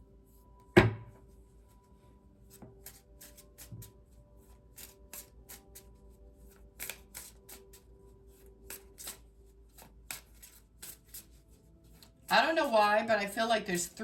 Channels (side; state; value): both; identical; correlation 1.00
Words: I don't know why, but I feel like there's